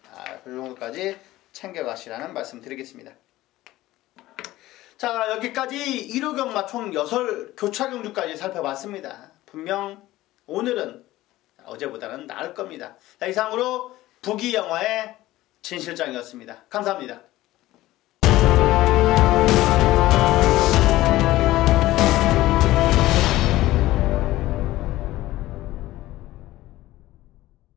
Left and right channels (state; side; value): quieter; right; 16.6 dB